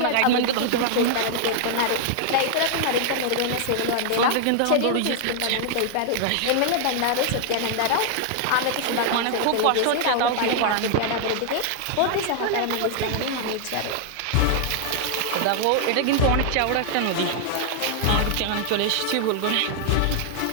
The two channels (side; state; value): both; different; correlation 0.00